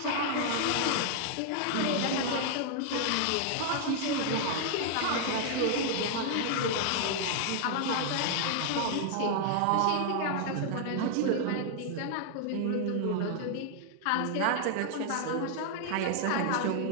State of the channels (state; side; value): different; both; correlation 0.00